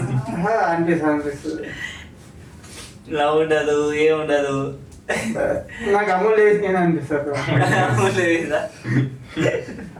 అనిపిస్తుంది లవ్ ఉండదు ఏముండదు. నాకు అమలు చేసి నేను అనిపిస్తుంది.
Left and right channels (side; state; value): both; identical; correlation 1.00